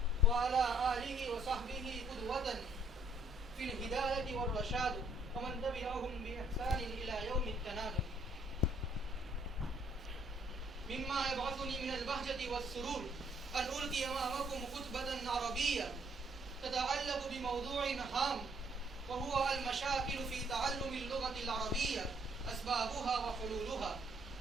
وعلى آله وصحبه قدوة في الهداية والرشاد، ومن تبعهم بإحسان إلى يوم التناد. مما يبعثني من البهجة والسرور أن ألقي أمامكم خطبة عربية تتعلق بموضوع هام، وهو المشاكل في تعلم اللغة العربية، أسبابها وحلولها.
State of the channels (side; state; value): both; normal; correlation 0.66